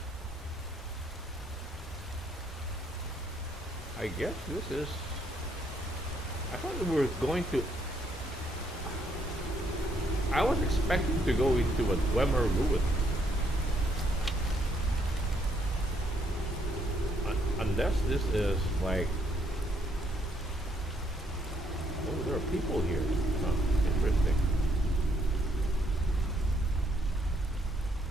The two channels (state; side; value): normal; both; correlation 0.71